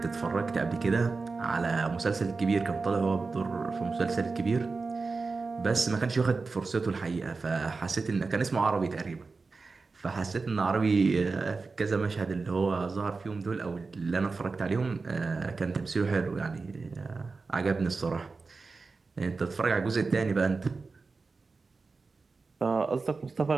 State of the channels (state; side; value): quieter; left; 4.2 dB